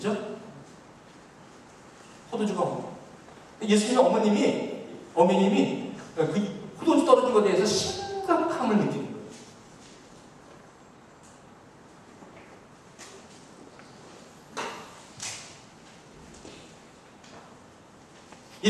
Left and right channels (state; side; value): identical; both; correlation 1.00